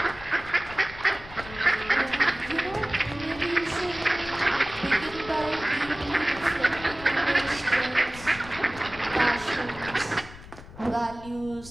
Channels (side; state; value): left; noise; rumble, 16 dB below the sound